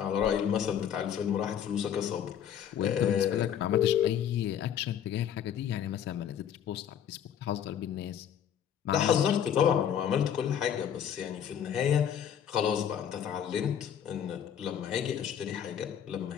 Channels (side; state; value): right; quieter; 9.1 dB